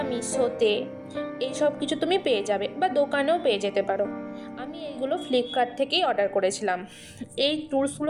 মিশোতে। এইসব কিছু তুমি পেয়ে যাবে বা দোকানেও পেয়ে যেতে পারো। আমি এইগুলো ফ্লিপকার্ট থেকেই অর্ডার করেছিলাম। এই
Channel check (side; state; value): both; identical; correlation 1.00